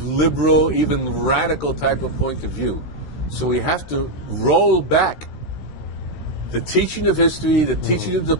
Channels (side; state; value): right; late; 16 ms